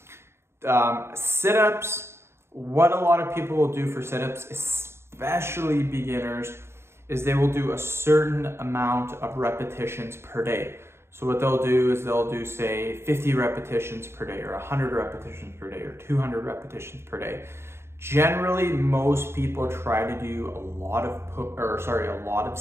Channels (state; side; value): late; left; 0.12 ms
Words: Sit-ups, what a lot of people will do for sit-ups, especially beginners, is they will do a certain amount of repetitions per day. So what they'll do is they'll do, say, 50 repetitions per day, or 100 repetitions per day, or 200 repetitions per day. Generally, most people try to do a lot of